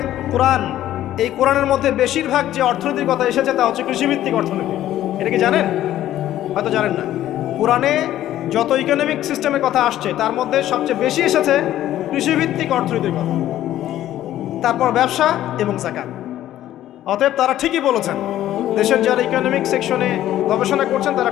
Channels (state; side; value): quieter; right; 13.0 dB